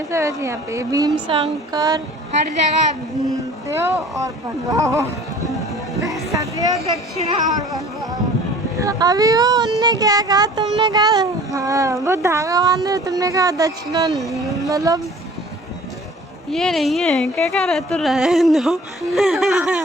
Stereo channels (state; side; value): normal; both; correlation 0.47